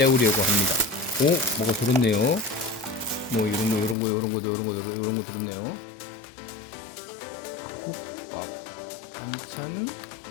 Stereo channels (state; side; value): drops out; right; at 4.0 s